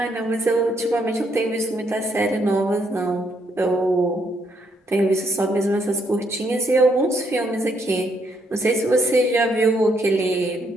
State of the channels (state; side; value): normal; both; correlation 0.73